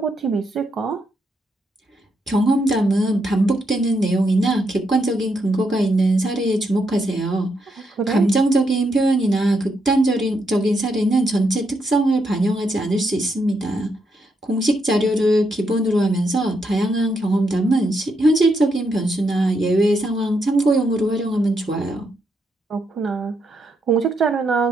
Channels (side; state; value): both; normal; correlation 0.79